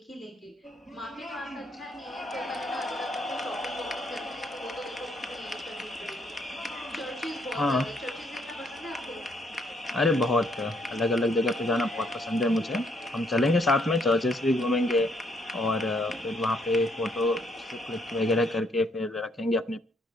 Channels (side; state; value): both; normal; correlation 0.70